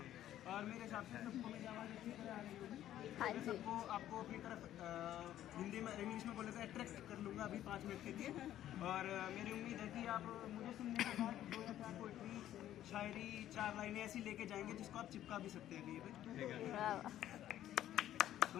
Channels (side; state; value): right; quieter; 12.3 dB